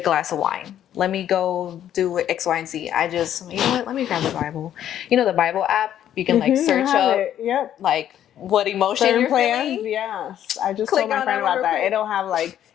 of wine. Let me go do X, Y, and Z. I just, you know what? Let me grab the Bible. You know, the Bible app, you can like search up like what emotion Certain you're plans, feeling. yes. I just Click told my on friend that one about real that. quick. It'll have like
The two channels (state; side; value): quieter; right; 10.8 dB